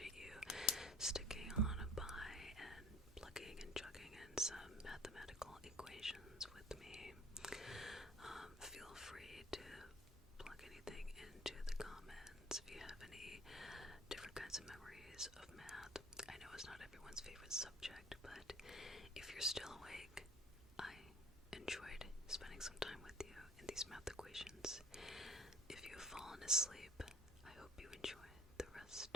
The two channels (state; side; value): normal; both; correlation 0.48